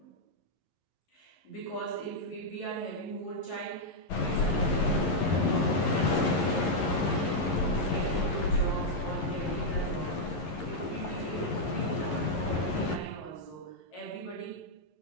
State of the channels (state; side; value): late; right; 11 ms